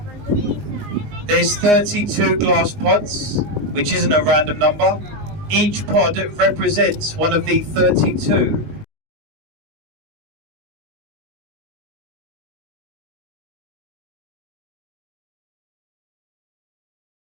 There's 32 glass pods, which isn't a random number. Each pod represents one of the 32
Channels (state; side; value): late; left; 19 ms